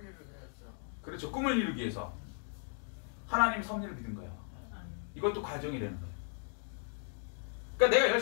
그렇죠. 꿈을 이루기 위해서. 하나님의 섭리를 믿은 거예요. 이것도 과정이 되는 거예요. 그러니까 내가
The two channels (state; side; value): silent; right; 54 dB below the other